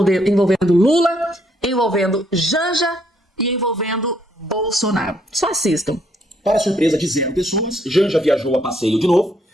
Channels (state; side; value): normal; both; correlation 0.71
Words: Lula, envolvendo Janja e envolvendo Bolsonaro. Só assistam. Para surpresa de 0 pessoas, Janja viajou a passeio de novo.